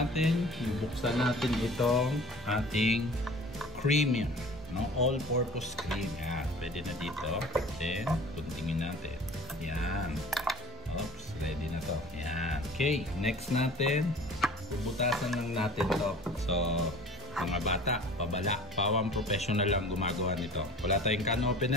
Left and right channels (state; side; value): normal; both; correlation 0.44